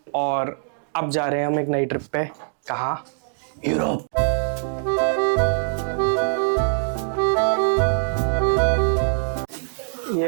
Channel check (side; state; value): left; silent; digital silence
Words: और अब जा रहे हैं हम एक नई ट्रिप पे। कहाँ? यूरोप।